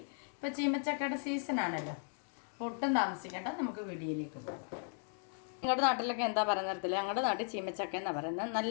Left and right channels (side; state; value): right; silent; 53 dB below the other